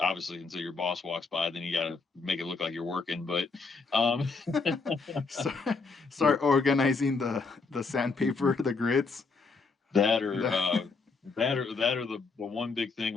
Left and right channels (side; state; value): right; quieter; 4.4 dB